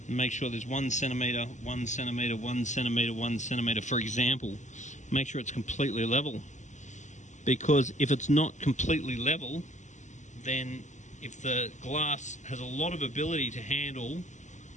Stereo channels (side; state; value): right; late; 0.35 ms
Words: and make sure there's 1 centimeter, 1 centimeter, 1 centimeter, 1 centimeter, for example. Make sure it's completely level, because if it's not completely level, then if the glass has a lot of ability to handle